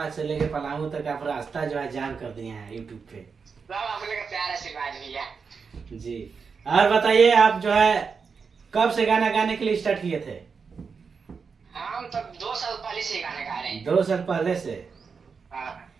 से लेके पलामू तक आप रास्ता जो है जाम कर दिए हैं यूट्यूब पे। सब आप लोग का प्यार आशीर्वाद भैया। जी और बताइए, आप जो है कब से गाना गाने के लिए स्टार्ट किए थे? हम तो 2 साल पहले से गाना गा रहे हैं। 2 साल पहले से। हाँ,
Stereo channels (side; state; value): left; quieter; 5.5 dB